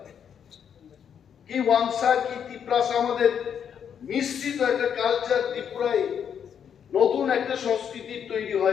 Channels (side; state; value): right; quieter; 8.1 dB